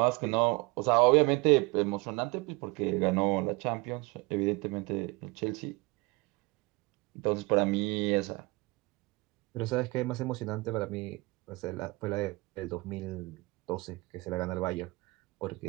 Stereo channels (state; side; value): quieter; left; 24.9 dB